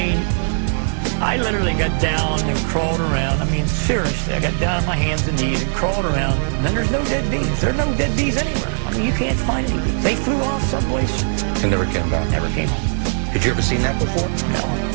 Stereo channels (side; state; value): left; silent; 55 dB below the other